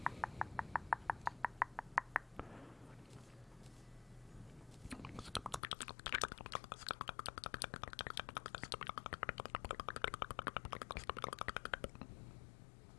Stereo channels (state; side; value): drops out; right; at 5.6 s